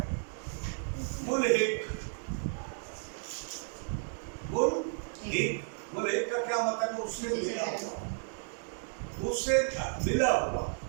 मुल्हिक। मुल्हिक का क्या मतलब है? उससे मिला हुआ, उससे मिला हुआ।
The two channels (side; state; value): left; silent; 56 dB below the other